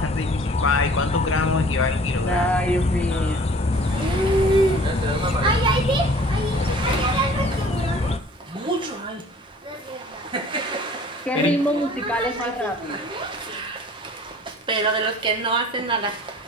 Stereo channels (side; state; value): both; normal; correlation 0.50